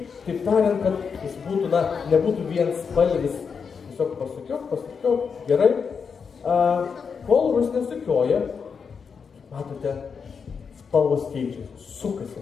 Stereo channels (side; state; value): right; quieter; 6.0 dB